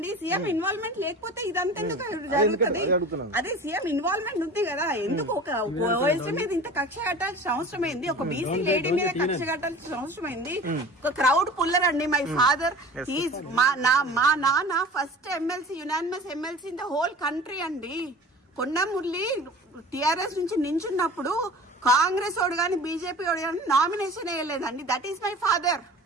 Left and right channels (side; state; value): both; normal; correlation 0.40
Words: సీఎం ఇన్వాల్వ్మెంట్ లేకపోతే ఇదంతా ఎందుకు జరుగుతుంది? అదే సీఎం ఇన్వాల్వ్మెంట్ ఉంది కదా. ఎందుకు ఒక ఓఎస్టీ మీద ఇంత కక్ష కట్టాల్సిన అవసరం ఏంది? ఒక బీసీ లేడీ మీద కక్ష కట్టాల్సిన అవసరం ఏంది? ఒక క్రౌడ్ పుల్లర్ అండి. మై ఫాదర్ మా నాన్న first MLC, unanimous MLC in the whole country అండి. కొండ మురళి టిఆర్ఎస్ నుంచి నించున్నప్పుడు కాంగ్రెస్ వాడు కానీ బీజేపీ వాడు కానీ నామినేషన్ వేయలేదండి. That is my father.